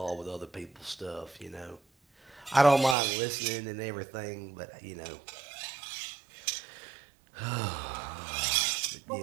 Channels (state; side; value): drops out; left; at 3.0 s